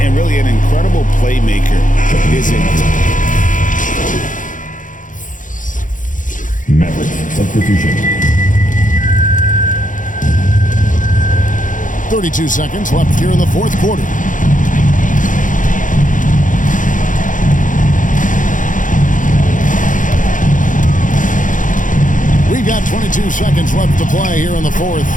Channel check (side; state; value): right; late; 0.38 ms